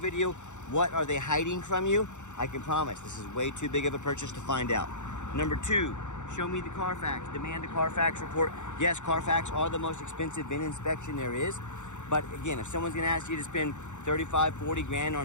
what are they hiding from you? I can promise this is way too big of a purchase to find out. Number 2, show me the Carfax. Demand a Carfax report. Yes, Carfax are the most expensive VIN inspection there is. But again, if someone's gonna ask you to spend 35, 40 grand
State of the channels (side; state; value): right; late; 0.84 ms